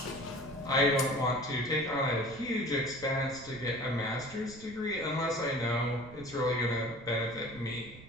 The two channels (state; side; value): noise; right; rumble, 18 dB below the sound